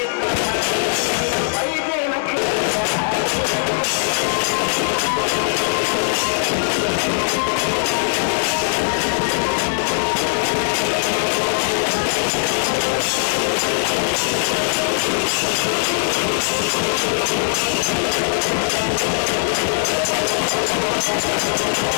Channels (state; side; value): silent; right; digital silence